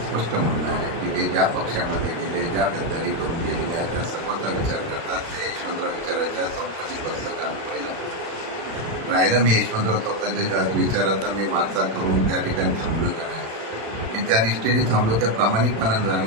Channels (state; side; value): late; left; 36 ms